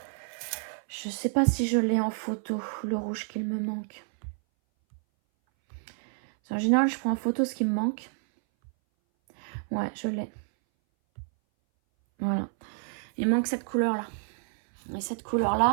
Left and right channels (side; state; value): left; silent; 58 dB below the other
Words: je sais pas si je l'ai en photo, le rouge qu'il me manque. En général, je prends en photo ce qui me manque. Ouais, je l'ai. Voilà. Il manque cette couleur-là. Et cette